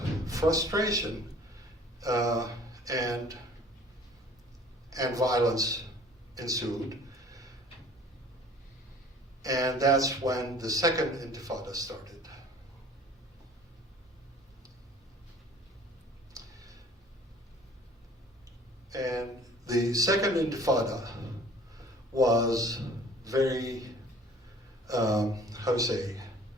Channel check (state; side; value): normal; both; correlation 0.50